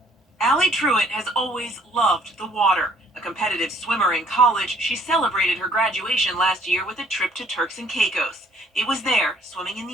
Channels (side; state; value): both; normal; correlation 0.61